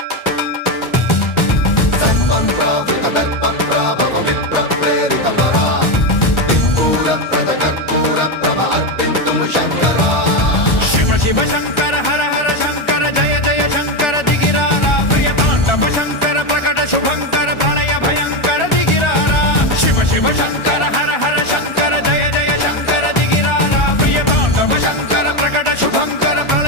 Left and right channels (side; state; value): right; late; 1.4 ms